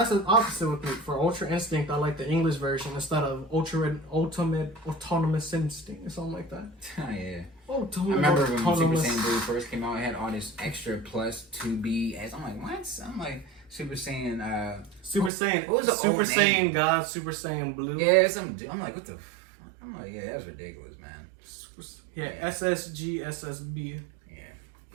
the opposite with me. For Ultra Instinct, I like the English version instead of Ultimate Autonomous Instinct or something like that. Oh yeah. Ultimate I remember when Autonomous. Super Saiyan Blue first came out, it had all this extra plus 2B. I'm like, what? I'm like Super Saiyan. Super Saiyan. What was the Super old Saiyan name? God, Super Saiyan Blue. Yeah, I'm like, what the. I'm like, yeah, that's ridiculous, man. Yeah, SSG, SSB. Yeah,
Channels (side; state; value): left; drops out; at 15.3 s